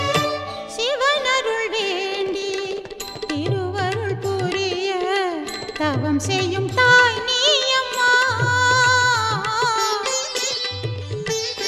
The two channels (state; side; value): identical; both; correlation 1.00